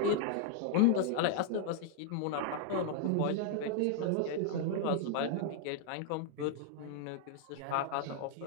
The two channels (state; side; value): different; both; correlation 0.00